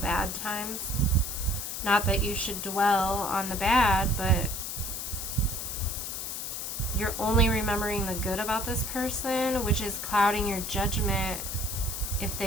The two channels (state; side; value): noise; left; hiss, 5 dB below the sound